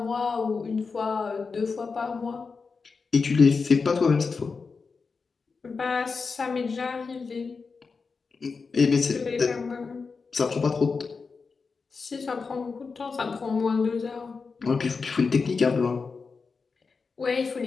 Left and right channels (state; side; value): quieter; right; 4.8 dB